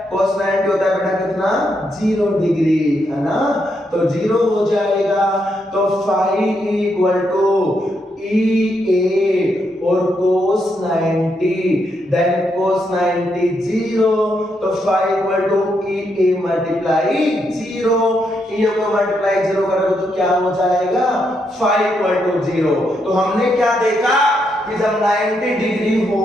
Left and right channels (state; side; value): normal; both; correlation 0.79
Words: cos 90 होता है बेटा कितना, 0 डिग्री, है ना। तो 0 हो जाएगा। तो phi equal to E A और cos 90, देन cos 90 0, तो phi equal to E A multiply 0, E को मल्टीप्लाई 0 करोगे तो क्या हो जाएगा, फाई इक्वल टू 0। तो हमने क्या देखा कि जब 90 डिग्री